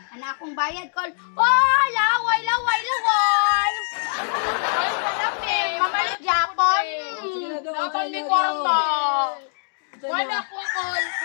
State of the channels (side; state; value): right; silent; digital silence